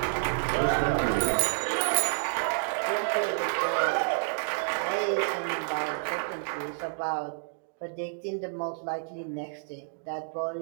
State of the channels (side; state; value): left; silent; digital silence